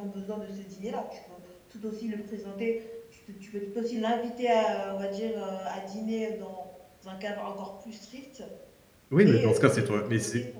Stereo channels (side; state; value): both; identical; correlation 1.00